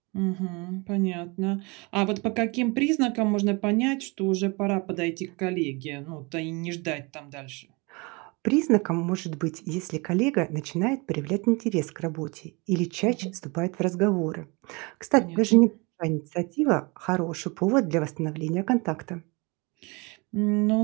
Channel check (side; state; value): left; quieter; 27.8 dB